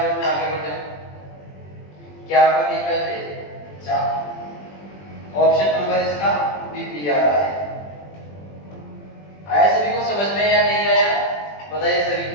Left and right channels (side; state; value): right; late; 20 ms